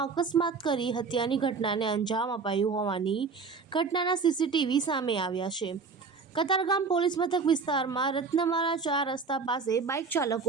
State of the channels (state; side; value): quieter; left; 5.0 dB